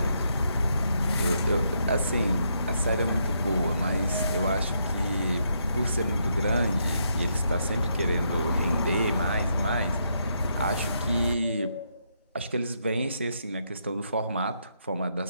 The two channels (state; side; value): inverted; both; correlation -0.77